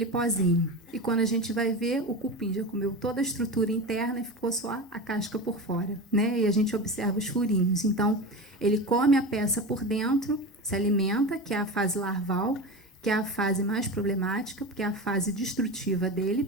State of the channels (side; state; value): both; normal; correlation 0.26